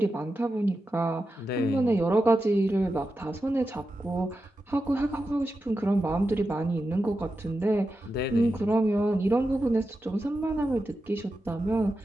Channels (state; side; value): normal; both; correlation 0.90